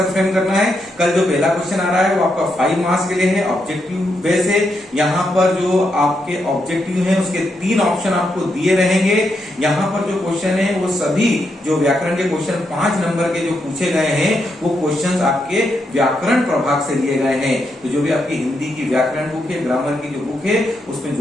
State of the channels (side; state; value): both; normal; correlation 0.81